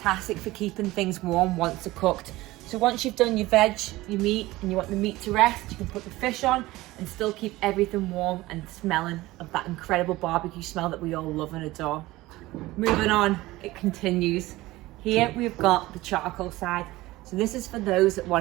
for keeping things warm once they're cooked. So once you've done your veg, your meat, and you want the meat to rest, you can put the fish on and still keep everything warm and smelling of that incredible barbecue smell that we all love and adore. Moving on, it continues. Here we've got the charcoal side. So this is for those that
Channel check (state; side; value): quieter; left; 18.5 dB